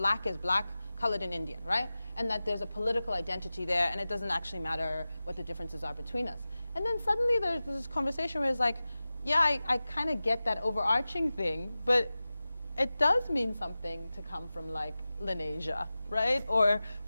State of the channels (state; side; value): inverted; both; correlation -0.96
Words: is black, colored, and Indian, right? And that there's a political identity there, and it doesn't actually matter what the differences are between us. And then suddenly there's this conversation where it's like, yeah, I kind of get that overarching thing, but it does mean something to come from, like, Lenasia, right? Or